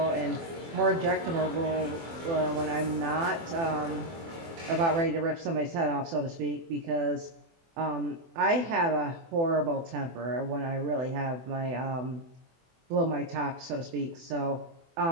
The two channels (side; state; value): left; late; 24 ms